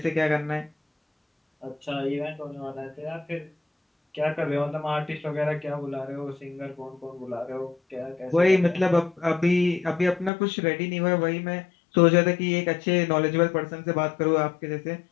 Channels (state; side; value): drops out; right; at 10.3 s